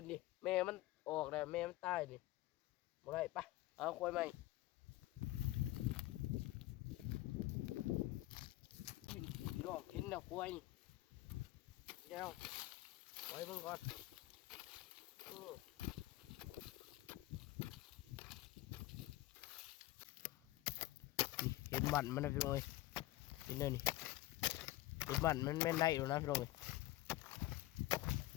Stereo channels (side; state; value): right; quieter; 17.2 dB